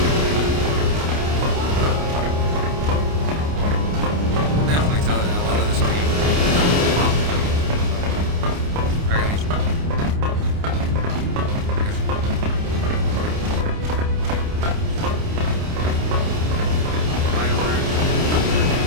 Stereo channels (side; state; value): left; late; 29 ms